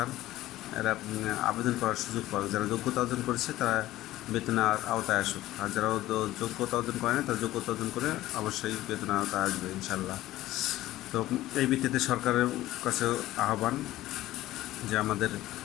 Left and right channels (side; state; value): right; quieter; 15.6 dB